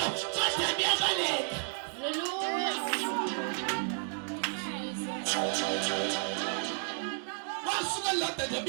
kodwa biyabaleka ngosuku lodwa nje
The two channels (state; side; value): silent; left; 56 dB below the other